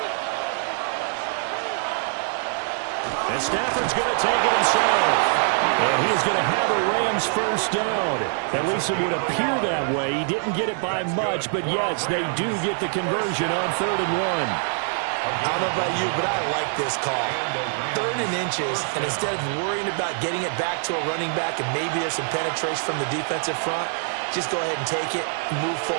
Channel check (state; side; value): silent; left; 58 dB below the other